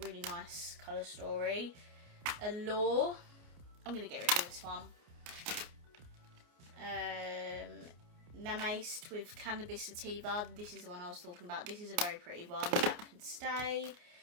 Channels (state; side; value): late; left; 29 ms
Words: nice colour story. Allure. I'm going to get rid of this one. Namaced with Cannabis Sativa. This is the one I was talking about. This is a very pretty one. That can stay.